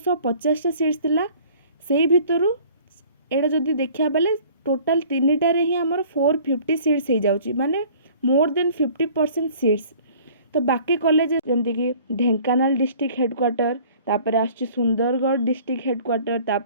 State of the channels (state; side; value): inverted; both; correlation -0.51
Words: टा सीट्स थिला। सेही भितरु एडा जदि देखिया बेले टोटल 3टा रे ही आमर 450 सीट्स हो जाउछि, माने मोर देन 50% सीट्स। तो बाकी कॉलेज जेमति कि ढेंकानाल डिस्ट्रिक्ट हेडक्वार्टर, तापर आछि सुंदरगढ़ डिस्ट्रिक्ट हेडक्वार्टर,